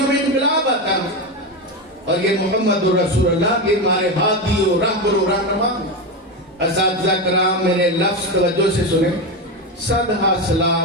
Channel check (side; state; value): both; normal; correlation 0.15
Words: میں انقلاب آتا ہے. اور یہ محمد رسول اللہ یہ ہمارے ہادی و رہبر و رہنما. اساتذہ کرام میرے لفظ توجہ سے سنیں. صدہ